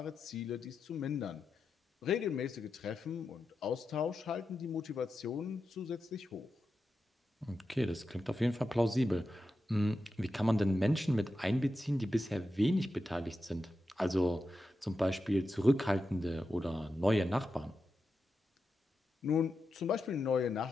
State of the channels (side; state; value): both; normal; correlation 0.89